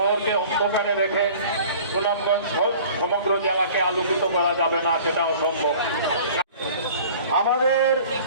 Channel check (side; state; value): both; inverted; correlation -0.46